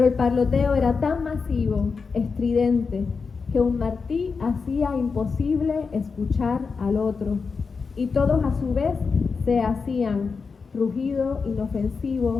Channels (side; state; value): right; quieter; 5.0 dB